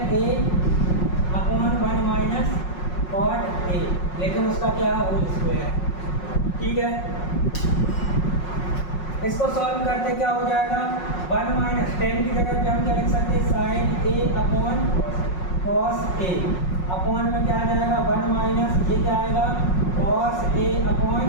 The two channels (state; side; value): late; right; 5.5 ms